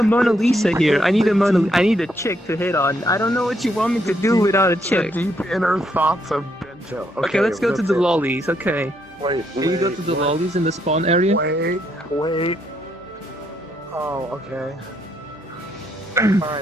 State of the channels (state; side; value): normal; both; correlation 0.75